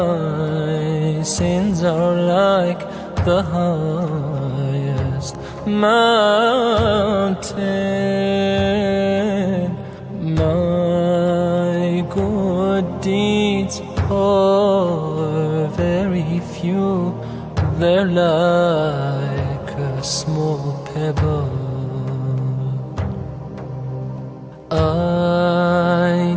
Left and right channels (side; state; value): both; identical; correlation 1.00